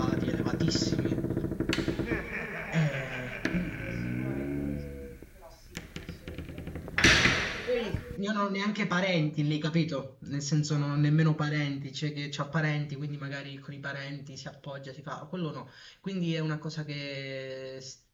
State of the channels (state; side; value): identical; both; correlation 1.00